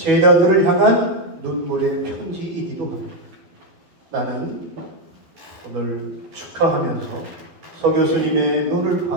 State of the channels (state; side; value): late; left; 12 ms